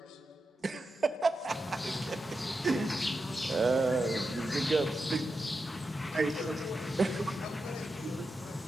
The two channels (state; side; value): normal; both; correlation 0.89